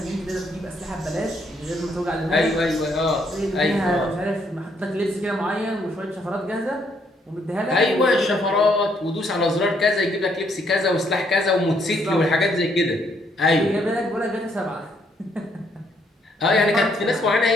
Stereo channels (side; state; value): both; normal; correlation 0.71